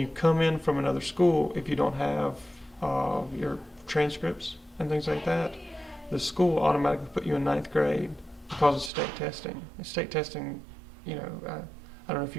come in from another school, if you don't have your transcripts and things like that, the school automatically put you in ninth grade because of state testing. And state testing, I don't know if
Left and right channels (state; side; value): drops out; left; at 8.9 s